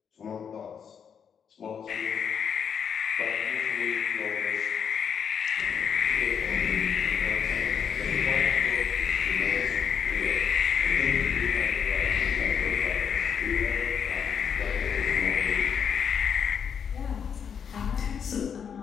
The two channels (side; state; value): right; quieter; 7.4 dB